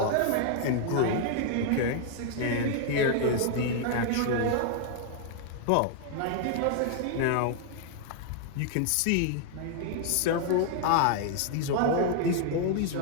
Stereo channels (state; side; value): different; both; correlation 0.00